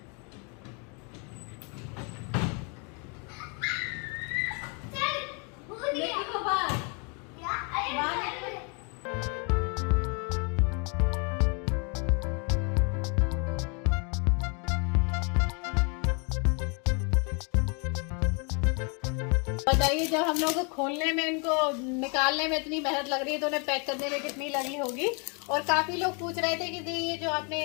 बताइए, जब हम लोग को खोलने में इनको निकालने में इतनी मेहनत लग रही है तो उन्हें पैक करने में कितनी लगी होगी। और काफ़ी लोग पूछ रहे थे कि ये जो आपने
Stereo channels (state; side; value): quieter; right; 35.2 dB